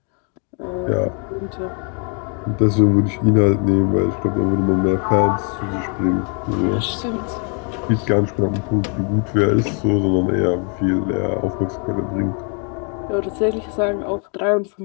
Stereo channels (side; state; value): right; quieter; 38.9 dB